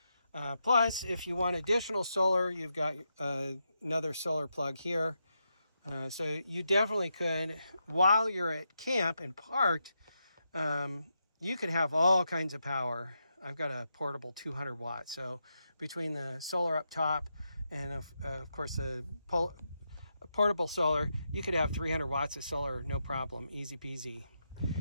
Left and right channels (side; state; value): both; inverted; correlation -0.84